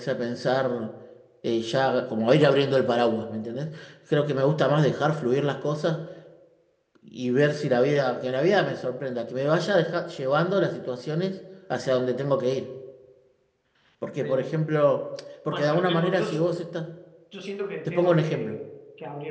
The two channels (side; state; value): both; identical; correlation 1.00